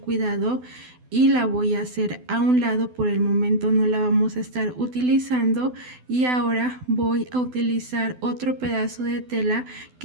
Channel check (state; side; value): late; left; 12 ms